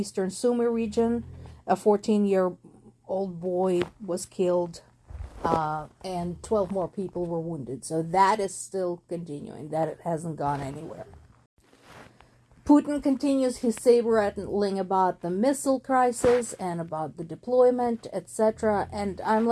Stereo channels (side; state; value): both; identical; correlation 1.00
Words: Sumy region, a 14-year-old boy was killed. And 12 more people were wounded. So that is still continuing. That it hasn't gone anywhere. Putin continues his saber-rattling about the missile crisis and about the deployment, etc. And I'm